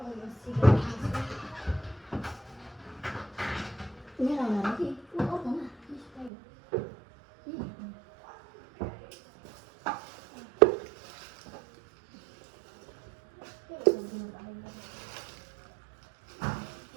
मेरो आउनु कि अर्को न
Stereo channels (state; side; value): drops out; left; at 6.3 s